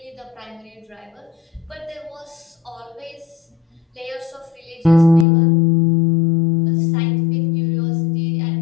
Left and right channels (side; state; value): right; drops out; at 5.2 s